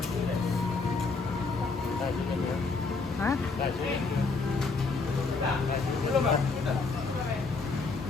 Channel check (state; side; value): quieter; right; 4.1 dB